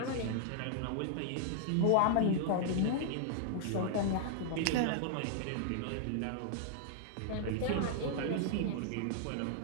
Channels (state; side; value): different; both; correlation 0.00